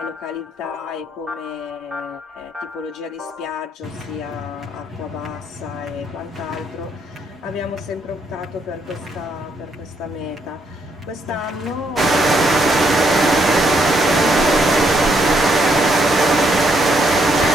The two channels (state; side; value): normal; both; correlation 0.74